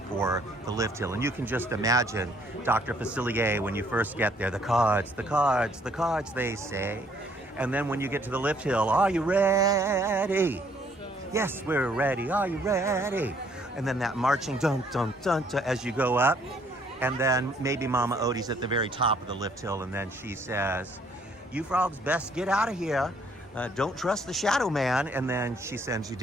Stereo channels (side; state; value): both; normal; correlation 0.64